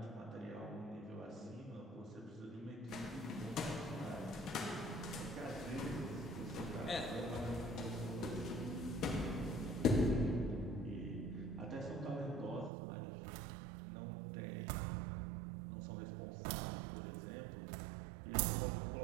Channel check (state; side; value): drops out; left; at 12.7 s